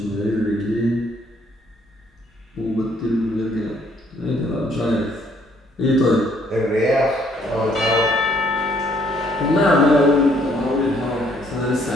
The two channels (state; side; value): normal; both; correlation 0.65